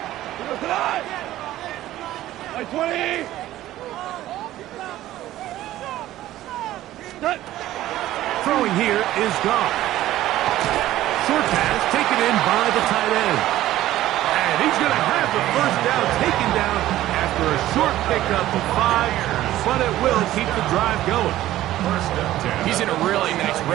120. Cut. Throwing here is Goff. Short pass taken in by the tight end. And he's going to have the first down taken down after a short pickup of 5, but it will keep the drive going. He's in a really nice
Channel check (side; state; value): left; quieter; 14.5 dB